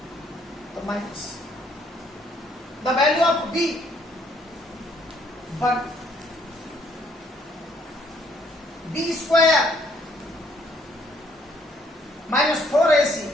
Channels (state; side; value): normal; both; correlation 0.66